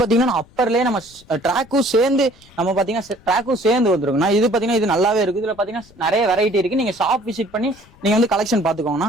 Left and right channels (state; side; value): noise; left; rumble, 27 dB below the sound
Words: அப்பர்லயே நம்ம ட்ராக்கும் சேர்ந்து நம்ம பாத்தீங்கன்னா ட்ராக்கும் சேர்ந்து வந்துருக்குண்ணா. இது பாத்தீங்கன்னா இது நல்லாவே இருக்கு. இதுல பாத்தீங்கன்னா நிறைய வெரைட்டி இருக்கு. நீங்க ஷாப் விசிட் பண்ணி நீங்க வந்து கலெக்ஷன் பாத்துக்கோங்கண்ணா.